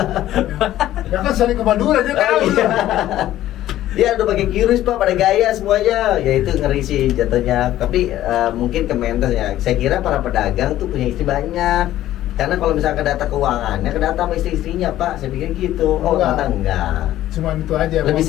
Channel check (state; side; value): quieter; right; 13.6 dB